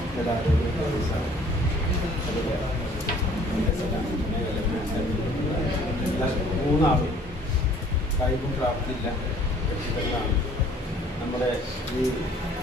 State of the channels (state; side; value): normal; both; correlation 0.56